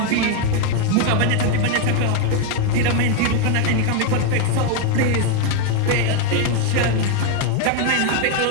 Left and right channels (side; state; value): both; different; correlation 0.01